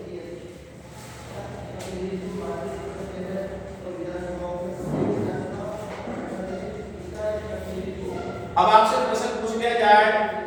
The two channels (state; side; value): identical; both; correlation 1.00